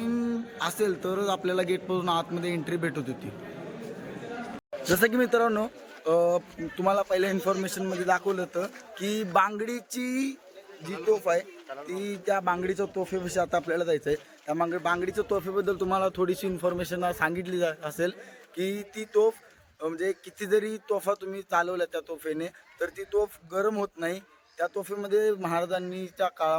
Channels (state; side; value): identical; both; correlation 1.00